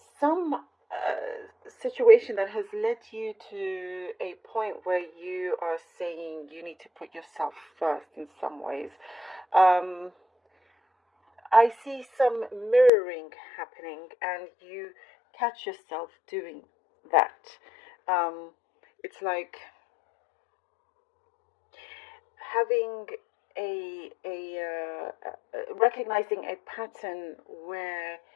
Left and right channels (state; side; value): drops out; right; at 12.9 s